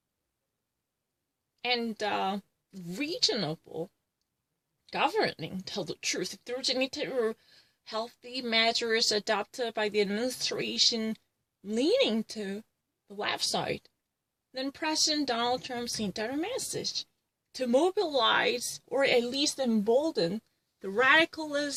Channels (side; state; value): both; identical; correlation 1.00